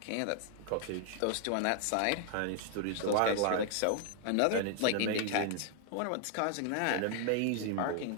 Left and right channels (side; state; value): both; different; correlation 0.00